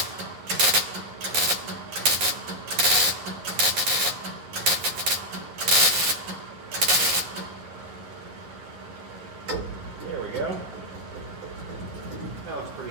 There we go. That looks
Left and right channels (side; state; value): left; late; 10 ms